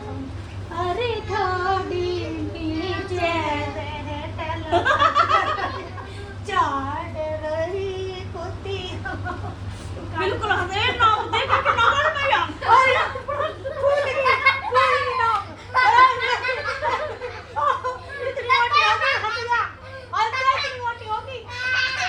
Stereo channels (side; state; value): both; identical; correlation 1.00